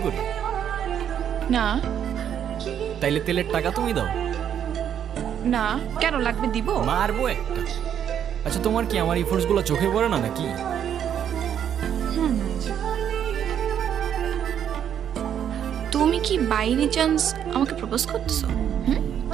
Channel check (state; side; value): quieter; left; 9.2 dB